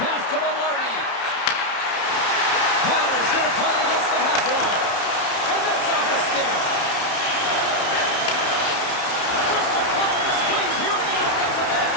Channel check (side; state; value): right; late; 31 ms